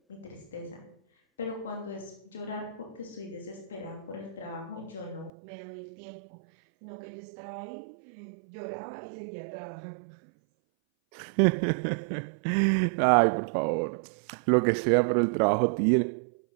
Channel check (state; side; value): drops out; left; at 5.3 s